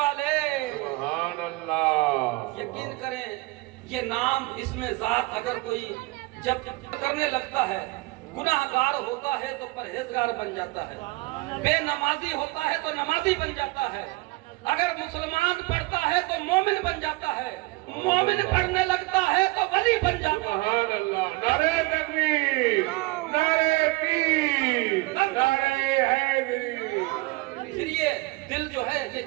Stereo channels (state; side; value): quieter; left; 22.6 dB